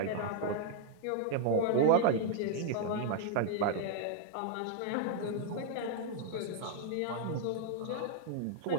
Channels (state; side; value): different; both; correlation 0.00